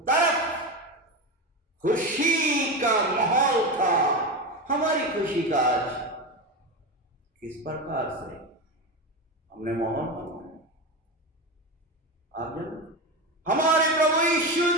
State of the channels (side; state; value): both; normal; correlation 0.19